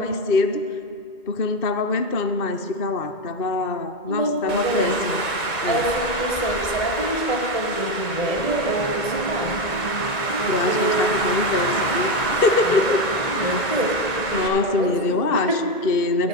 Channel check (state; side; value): late; right; 1.9 ms